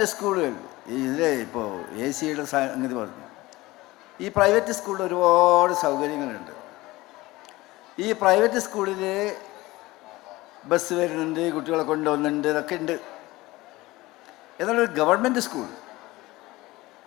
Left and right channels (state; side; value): quieter; right; 19.5 dB